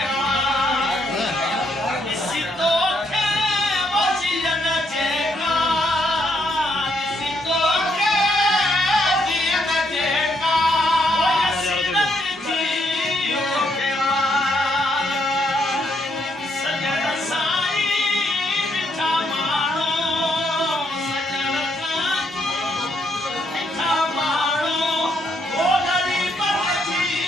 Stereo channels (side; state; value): both; normal; correlation 0.75